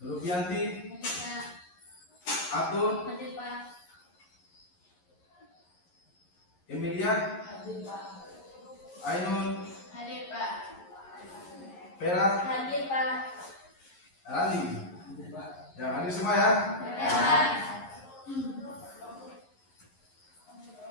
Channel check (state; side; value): late; right; 11 ms